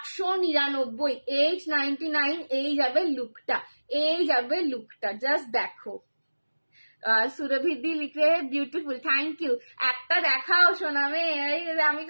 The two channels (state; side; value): inverted; both; correlation -1.00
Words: 899। এই যাবে লুকটা, এই যাবে লুকটা, জাস্ট দেখো। সুরভিদি লিখে বিউটিফুল, থ্যাংক ইউ। একটা দেখাও সোনামে, আমি